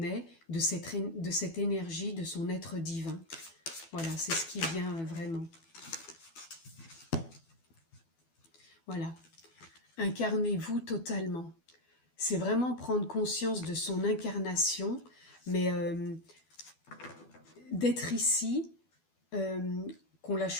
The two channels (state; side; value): late; right; 12 ms